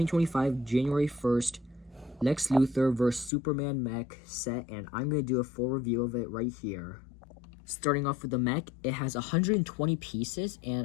January 1st Lex Luthor vs. Superman Mech set, and I'm going to do a full review of it right here. Starting off with the Mech, it has 120 pieces,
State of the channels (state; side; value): drops out; right; at 3.3 s